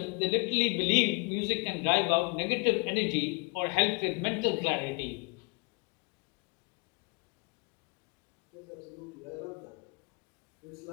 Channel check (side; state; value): right; quieter; 31.8 dB